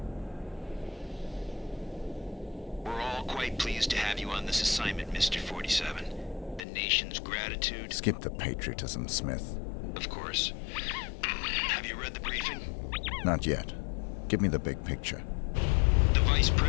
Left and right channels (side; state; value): right; drops out; at 6.7 s